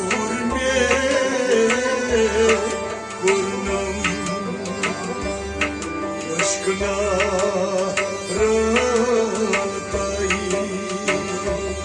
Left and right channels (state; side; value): identical; both; correlation 1.00